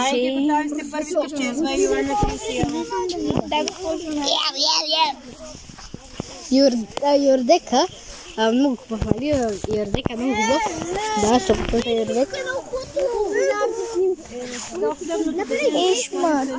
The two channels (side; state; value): both; identical; correlation 1.00